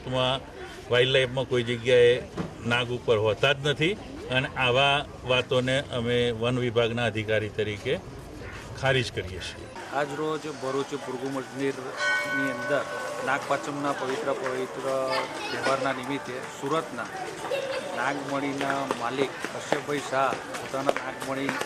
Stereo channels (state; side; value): identical; both; correlation 1.00